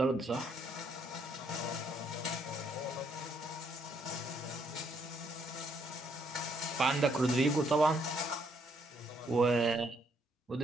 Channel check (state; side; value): normal; both; correlation 0.71